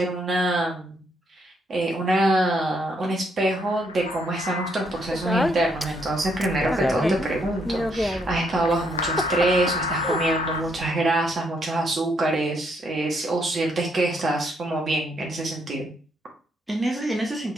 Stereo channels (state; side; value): normal; both; correlation 0.73